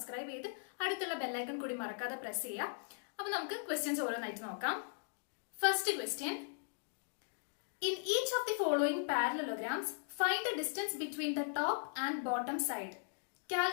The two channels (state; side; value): silent; right; digital silence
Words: ചെയ്ത് അടുത്തുള്ള ബെല്ലൈക്കൺ കൂടി മറക്കാതെ പ്രസ് ചെയ്യാം. അപ്പൊ നമുക്ക് ക്വസ്റ്റ്യൻസ് ഓരോന്നായിട്ട് നോക്കാം. First question: In each of the following parallelograms, find the distance between the top and bottom side.